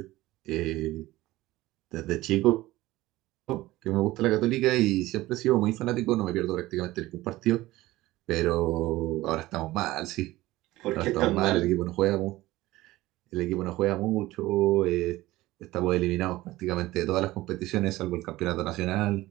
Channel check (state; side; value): quieter; left; 17.7 dB